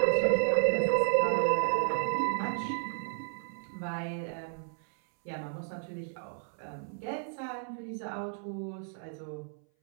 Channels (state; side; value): silent; left; 56 dB below the other